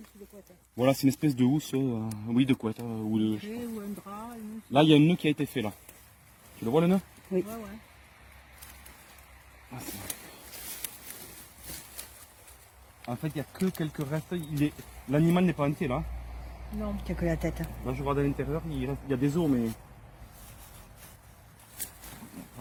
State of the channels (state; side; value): identical; both; correlation 1.00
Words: de couette. Voilà, c'est une espèce de housse, oui, de couette. Ou de... Ou un drap, une housse. Là, il y a un nœud qui a été fait là. Tu le vois le nœud? Oui. Ouais, ouais. Ah, en fait, il n'y a que quelques restes. L'animal n'est pas entier là. Non, il n'y a que la tête. Là, je regarde à l'intérieur, il y a des os, mais.